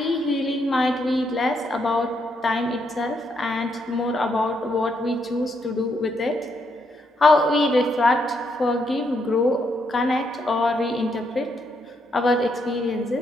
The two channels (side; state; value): both; normal; correlation 0.77